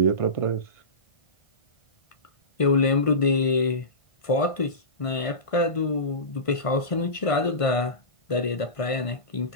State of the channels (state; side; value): late; right; 1.5 ms